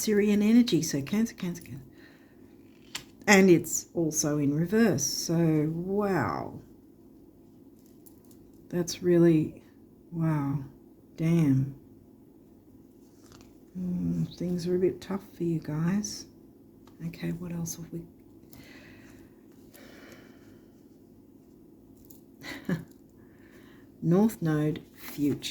energy. So Cancer, Cancer, Cancer. And it's also in reverse. So, wow. That's really, wow. Damn. Things are a bit tough for you guys. Okay, what else have we? North Node,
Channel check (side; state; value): both; identical; correlation 1.00